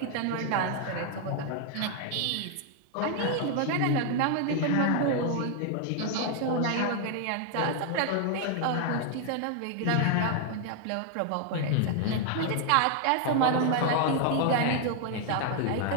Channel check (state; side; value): different; both; correlation 0.00